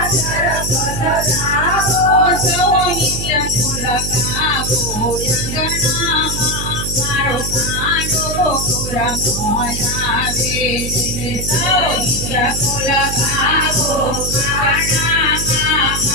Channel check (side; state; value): right; noise; hum, 5 dB below the sound